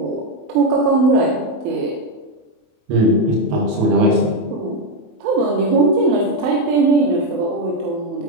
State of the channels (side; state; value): left; late; 27 ms